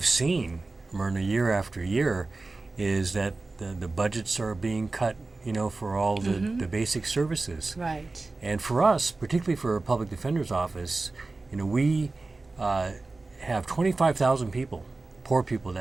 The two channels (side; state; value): left; quieter; 3.4 dB